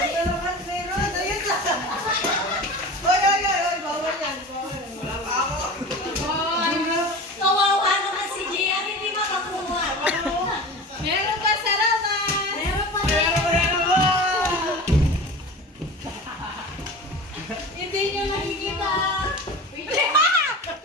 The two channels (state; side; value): normal; both; correlation 0.34